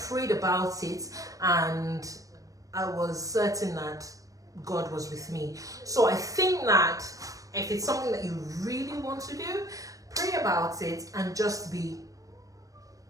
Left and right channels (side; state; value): left; late; 0.16 ms